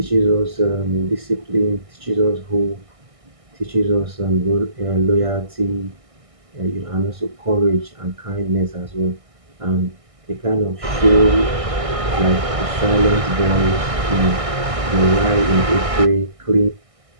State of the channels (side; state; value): left; late; 1.6 ms